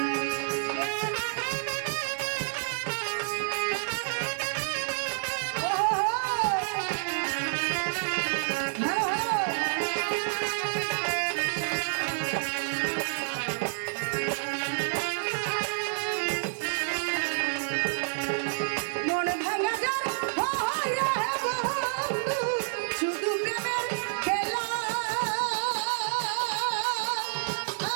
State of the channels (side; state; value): left; silent; digital silence